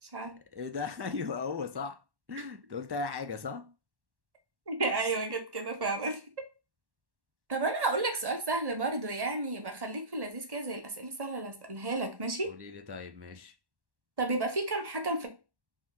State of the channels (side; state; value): left; late; 1.1 ms